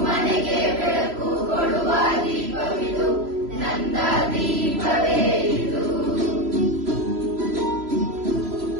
ಮನೆಗೆ ಬೆಳಕು ಕೊಡುವ ದೀಪವಿದು ನಂದ ದೀಪವೇ ಇದು.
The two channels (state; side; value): late; left; 3.0 ms